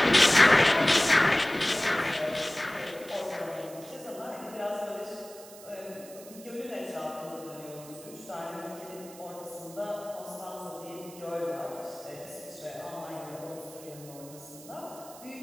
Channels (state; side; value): noise; right; hiss, 18 dB below the sound